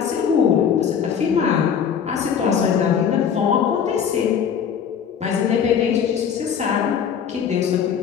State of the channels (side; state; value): right; quieter; 7.7 dB